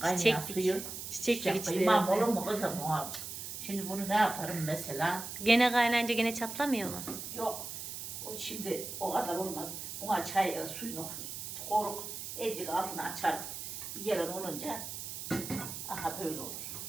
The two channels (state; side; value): noise; right; hiss, 7 dB below the sound